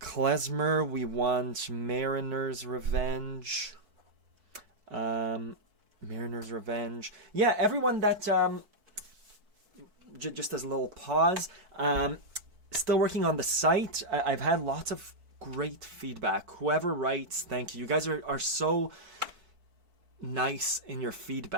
we want Mariner's Revenge. Mariner's Revenge. Yeah, everyone that just as a little pause, still working on the site. I've had lots of great feedback. Whoever writes, thank you. You guys are so nice in your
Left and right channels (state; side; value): late; left; 4.6 ms